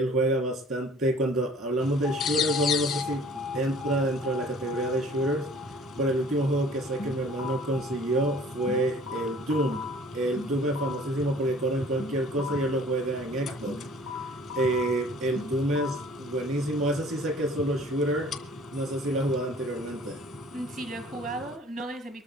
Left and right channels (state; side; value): normal; both; correlation 0.51